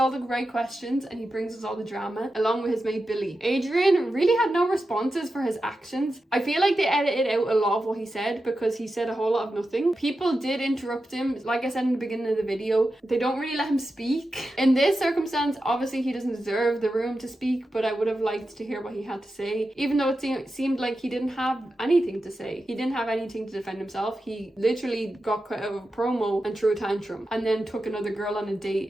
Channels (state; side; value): normal; both; correlation 0.91